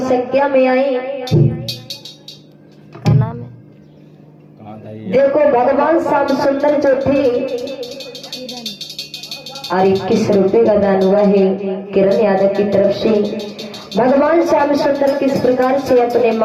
संख्या में आई। देखो भगवान श्याम सुंदर जो थे और 21 रुपए का दान हुआ है किरण यादव की तरफ से। भगवान श्याम सुंदर किस प्रकार से अपने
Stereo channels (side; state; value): both; identical; correlation 1.00